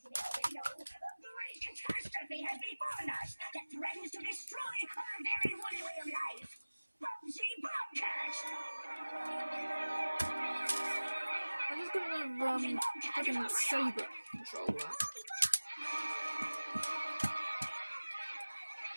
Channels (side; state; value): both; inverted; correlation -1.00